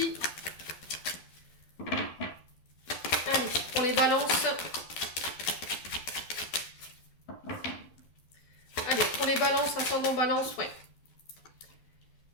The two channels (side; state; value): right; late; 12 ms